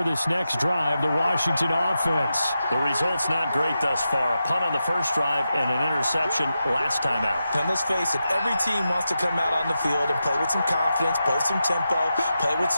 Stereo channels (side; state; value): both; inverted; correlation -0.89